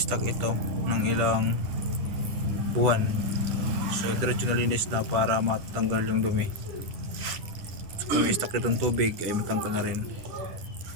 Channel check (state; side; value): late; left; 10 ms